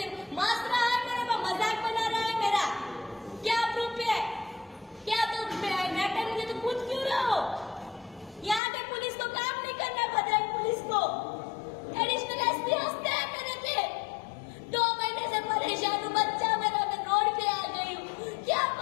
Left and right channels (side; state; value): right; drops out; at 8.6 s